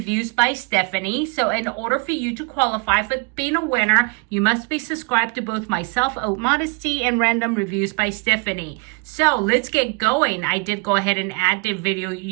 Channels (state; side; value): quieter; left; 31.8 dB